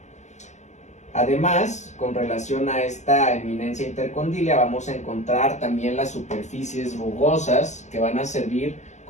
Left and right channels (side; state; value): right; late; 0.34 ms